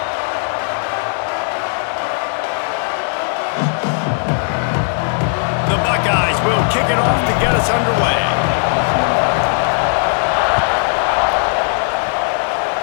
The Buckeyes will kick it off to get us underway.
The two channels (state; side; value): silent; right; 55 dB below the other